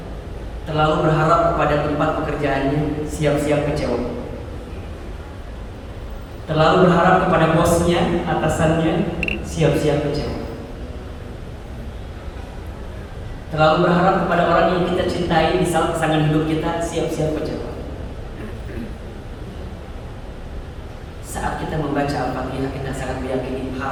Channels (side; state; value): both; identical; correlation 1.00